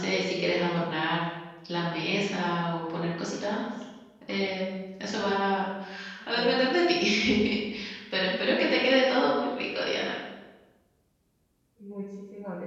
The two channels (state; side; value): identical; both; correlation 1.00